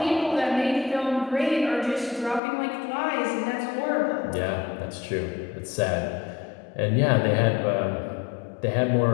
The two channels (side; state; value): right; drops out; at 2.4 s